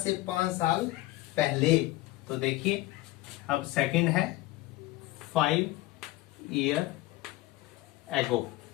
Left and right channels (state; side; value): quieter; right; 18.4 dB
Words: 5 साल पहले। तो देखिए अब सेकंड है 5 ईयर एगो,